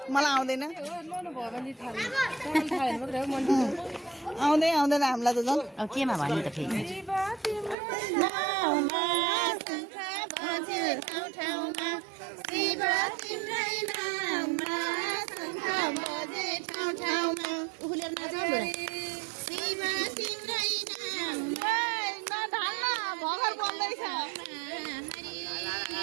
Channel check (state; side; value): drops out; left; at 7.8 s